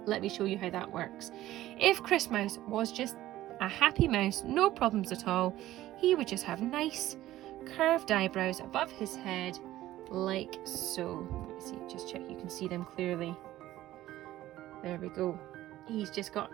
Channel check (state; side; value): quieter; left; 14.8 dB